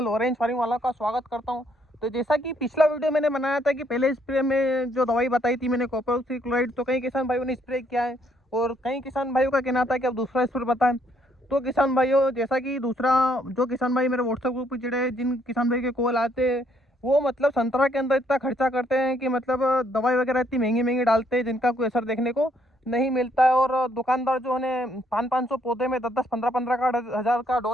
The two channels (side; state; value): both; normal; correlation 0.70